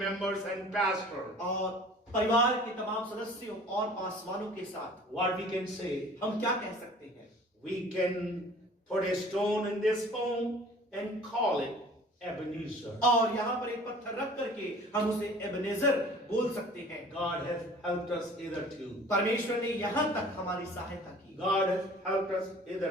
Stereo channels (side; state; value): both; normal; correlation 0.47